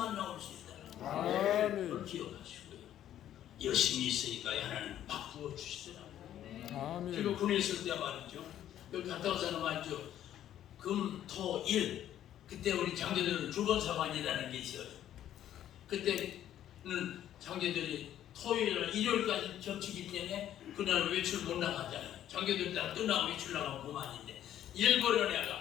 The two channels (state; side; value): quieter; right; 11.4 dB